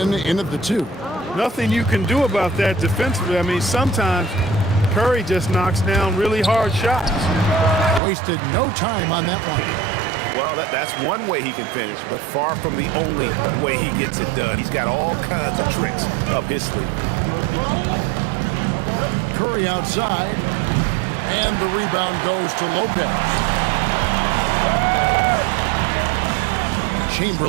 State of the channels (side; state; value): left; drops out; at 8.0 s